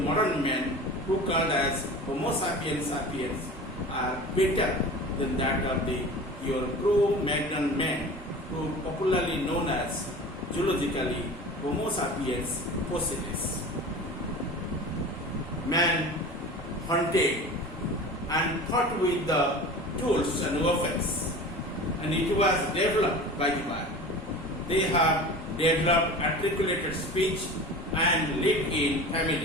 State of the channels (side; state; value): both; normal; correlation 0.36